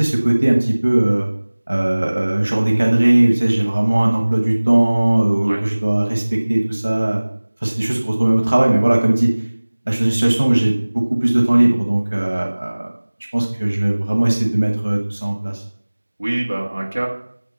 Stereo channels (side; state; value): both; inverted; correlation -1.00